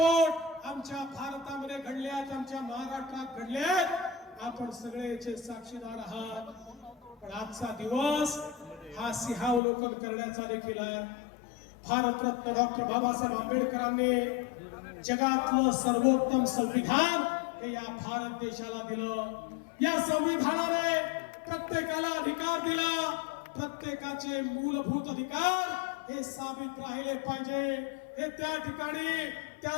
आमच्या भारतामध्ये घडले आहेत, आमच्या महाराष्ट्रात घडले आहेत. आपण सगळेचे साक्षीदार आहात. पण आजचा दिवस हा सिंहावलोकन करण्याचा देखील आहे. भारतरत्न डॉक्टर बाबासाहेब आंबेडकरांनी जगातलं सर्वोत्तम संविधान हे या भारत देशाला दिलं. या संविधानाने प्रत्येकाला अधिकार दिला. प्रत्येकाचे मूलभूत अधिकार हे साबित राहिले पाहिजे. हे त्या ठिकाणी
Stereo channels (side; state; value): right; drops out; at 9.6 s